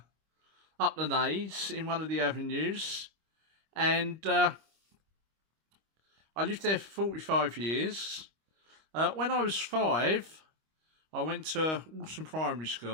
the Naze in one of the avenues, and I lived there for 45 years. When I was 5, I went to Walton Primary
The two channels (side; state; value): left; late; 25 ms